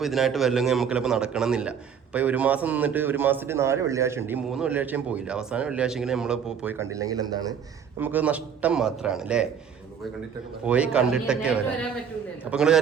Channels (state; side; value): quieter; left; 7.4 dB